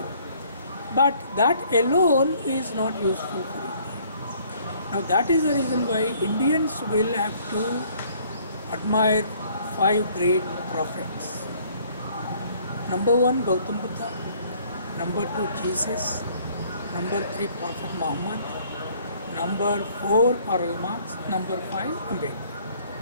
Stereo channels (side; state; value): both; inverted; correlation -0.60